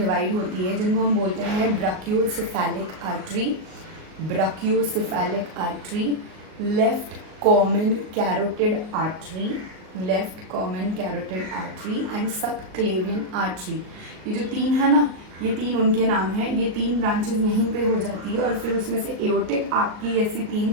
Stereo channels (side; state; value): left; late; 38 ms